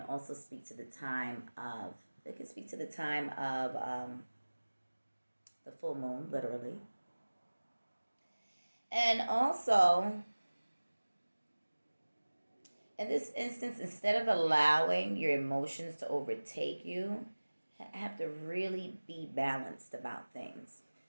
also speak to the time of, the full moon, literally. And also, in this instance, instead of allowing your emotions to overtake you, have to really be balanced about things.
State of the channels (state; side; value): inverted; both; correlation -1.00